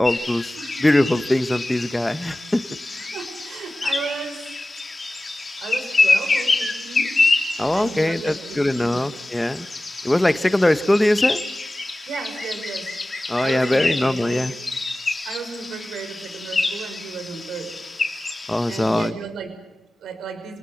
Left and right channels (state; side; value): normal; both; correlation 0.96